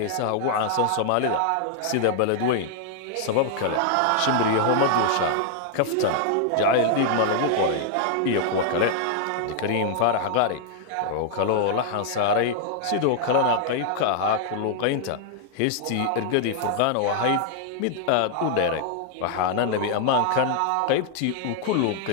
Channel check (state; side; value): different; both; correlation 0.00